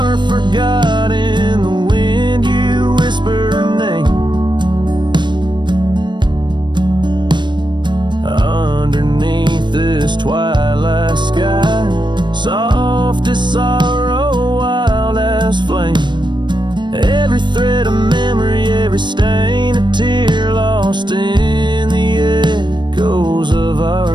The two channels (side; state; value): left; late; 0.22 ms